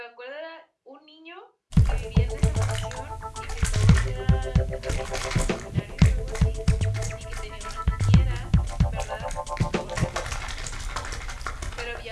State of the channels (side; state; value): both; identical; correlation 1.00